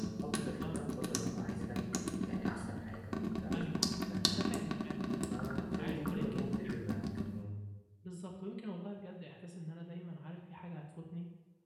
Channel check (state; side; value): identical; both; correlation 1.00